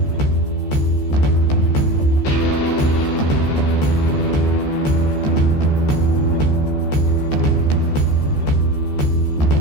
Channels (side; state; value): right; late; 14 ms